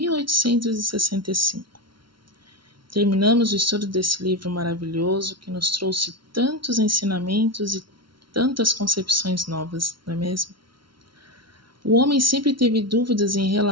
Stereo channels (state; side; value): late; left; 0.73 ms